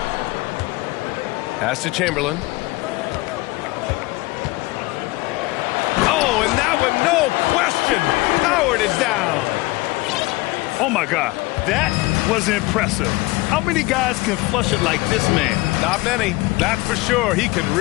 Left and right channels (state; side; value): quieter; right; 21.7 dB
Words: Pass to Chamberlain. Oh, and that one, no question. Howard is down. Oh, my God. That was impressive. How many guys can flush it like this man? Not many. That's for sure. He can